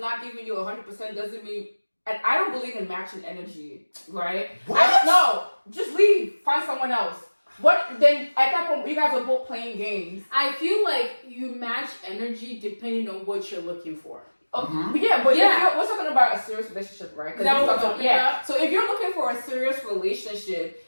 giving you 100% doesn't mean, and I don't believe in matching energy, right? What? No, just leave, find someone else. What then? At that point, you guys are both playing games. I feel like you match energy depending on what you're looking for. Yeah, but we're talking about a serious relationship, right? That's what I'm talking about. So if you're looking for a serious relationship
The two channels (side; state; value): both; inverted; correlation -1.00